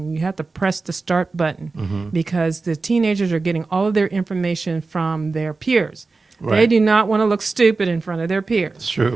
You have to press the start button, because the teenagers are getting all of their information from their peers. Right. They do not want to look stupid in front of their peers. It's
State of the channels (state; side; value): quieter; left; 3.9 dB